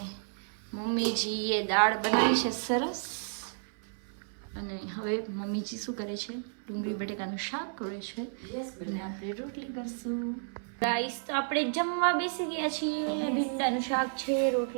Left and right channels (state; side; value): silent; left; 57 dB below the other